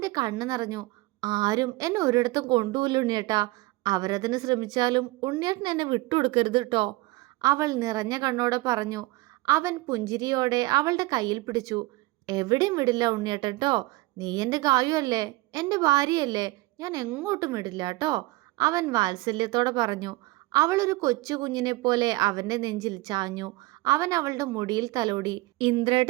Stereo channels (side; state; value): left; quieter; 21.1 dB